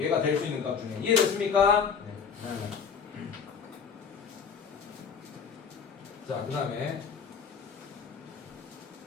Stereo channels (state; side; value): quieter; right; 6.4 dB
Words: 될 수 있는 값 중에. 이해됐습니까? 네. 자, 그 다음에